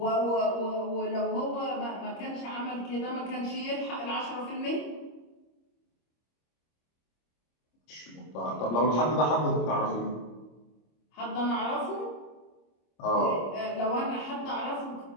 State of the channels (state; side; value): late; right; 26 ms